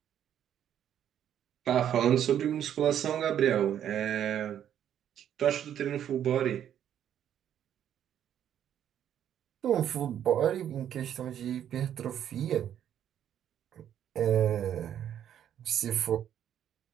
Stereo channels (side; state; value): left; quieter; 10.0 dB